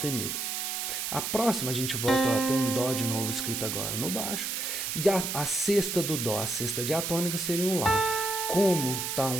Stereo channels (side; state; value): right; noise; hiss, 2 dB below the sound